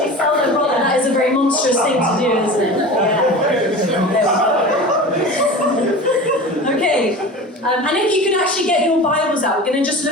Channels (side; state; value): both; normal; correlation 0.34